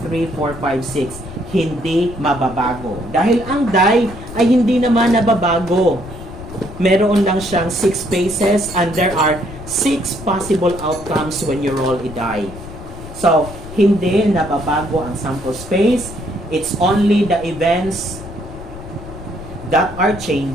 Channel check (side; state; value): left; noise; rumble, 13 dB below the sound